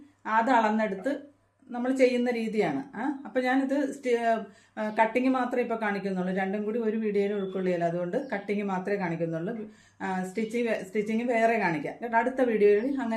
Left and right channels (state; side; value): identical; both; correlation 1.00